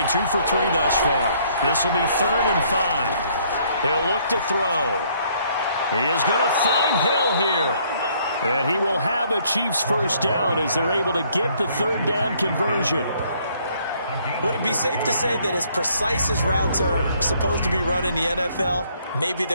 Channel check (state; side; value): inverted; both; correlation -0.65